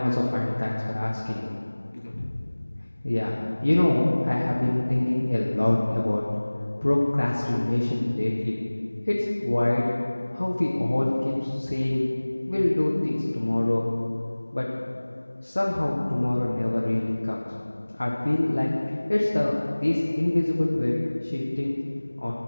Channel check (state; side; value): inverted; both; correlation -1.00